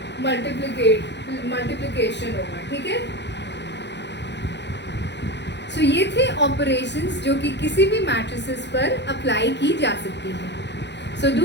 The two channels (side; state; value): right; late; 0.51 ms